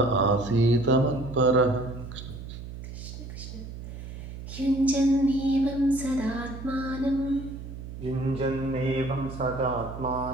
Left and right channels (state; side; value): noise; right; hum, 11 dB below the sound